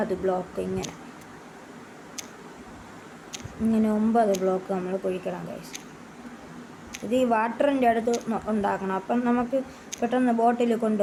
ബ്ലോക്ക് ഇങ്ങനെ 9 ബ്ലോക്ക് നമ്മൾ കുഴിക്കണം ഗൈസ്. ഇത് ഈ വാട്ടറിൻ്റെ അടുത്ത് ഉണ്ടാക്കണം. അപ്പം നമുക്ക് പെട്ടെന്ന് ബോട്ടിൽ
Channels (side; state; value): both; identical; correlation 1.00